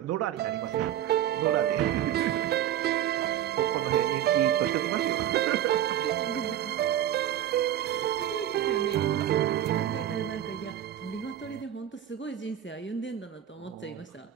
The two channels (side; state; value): left; quieter; 11.3 dB